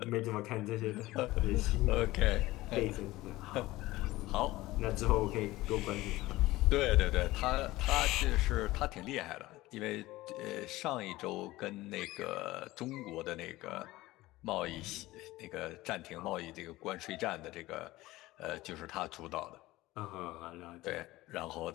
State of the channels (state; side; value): quieter; right; 18.2 dB